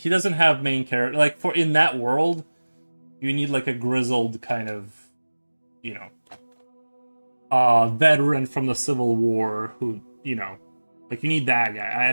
doesn't have main character. Like for in that world, you need like a grizzled kind of, you know, veteran from the Civil War who, like you need that guy. I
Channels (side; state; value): both; inverted; correlation -1.00